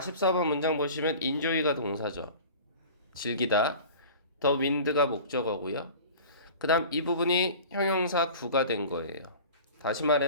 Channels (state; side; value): inverted; both; correlation -0.40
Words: 문장 보시면 enjoy가 동사죠. 즐기다. the wind가 목적어고요. 그 다음 이 부분이 형용사 구가 된 거예요. 다시